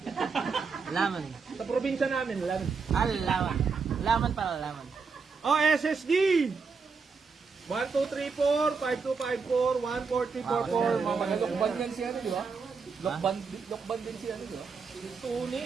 Laman. Sa probinsya namin, lemon. Laman. Laman pala, laman. Oh, SSD! 1234, 5254, 14344. Lokban yan si ano, di ba? Lokban din si ano, di ba?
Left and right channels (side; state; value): left; quieter; 5.0 dB